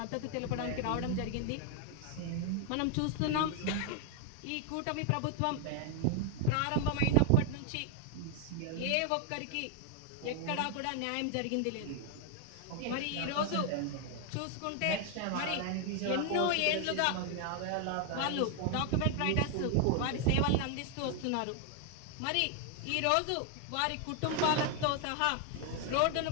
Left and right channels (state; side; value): different; both; correlation 0.00